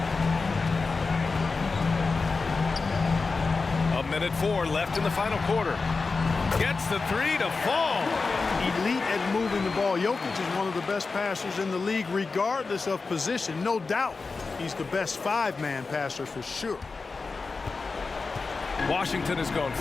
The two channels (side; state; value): right; quieter; 4.2 dB